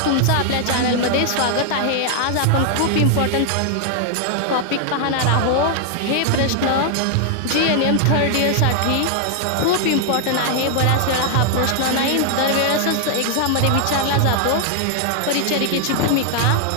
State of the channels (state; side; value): different; both; correlation 0.00